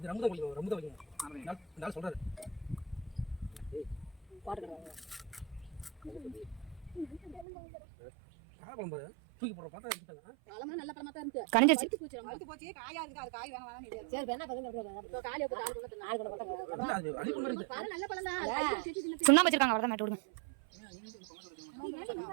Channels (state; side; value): drops out; left; at 7.5 s